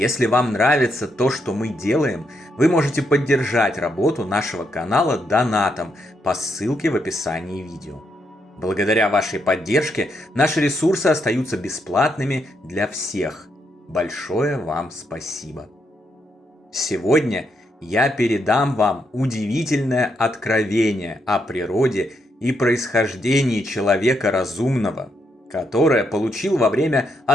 вам нравится то, что мы делаем, вы можете поддержать работу нашего канала донатом по ссылке в описании видео. Благодаря вашей поддержке наши ресурсы остаются бесплатными для всех. Большое вам спасибо. Сегодня я передам вам удивительное откровение о природе и происхождении человека разумного, которое получил во время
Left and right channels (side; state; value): both; normal; correlation 0.78